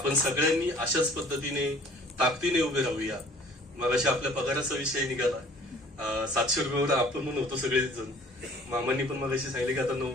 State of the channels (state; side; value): normal; both; correlation 0.52